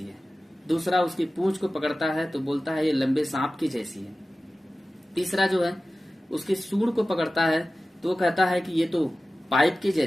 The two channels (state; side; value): normal; both; correlation 0.96